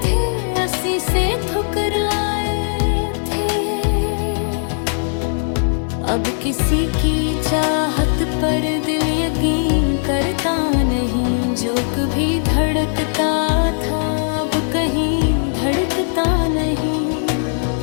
थे अस्सी से ठुकराए थे। अब किसी की चाहत पर दिल यकीन करता नहीं, जो कभी धड़कता था अब कहीं धड़कता नहीं।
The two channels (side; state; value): right; silent; digital silence